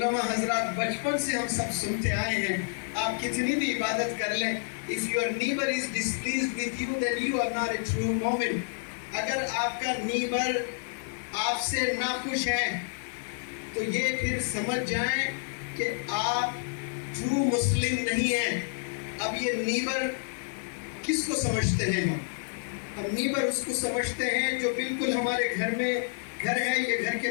حضرات بچپن سے ہم سب سنتے آئے ہیں، آپ کتنی بھی عبادت کر لیں، if your neighbor is displeased with you then you are not a true momin۔ اگر آپ کا نیبر آپ سے ناخوش ہے تو یہ پھر سمجھ جائیں کہ آپ ٹرو مسلم نہیں ہیں۔ اب یہ نیبر کس کو سمجھتے ہیں ہم نیبر اس کو سمجھتے ہیں جو بالکل ہمارے گھر میں گھر ہے، یہ گھر کے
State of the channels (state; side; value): silent; right; 56 dB below the other